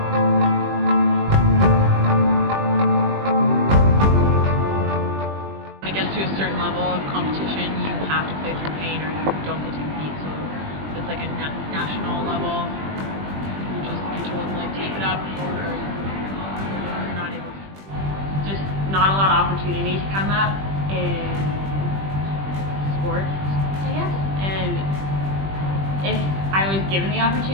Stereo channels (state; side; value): late; left; 20 ms